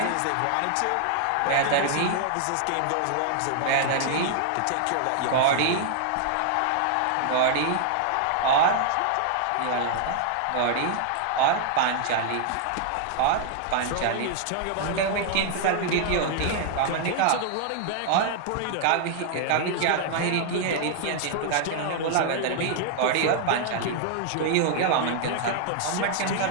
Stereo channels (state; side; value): different; both; correlation 0.00